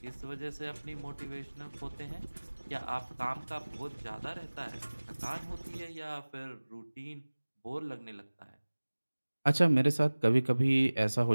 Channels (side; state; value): both; inverted; correlation -1.00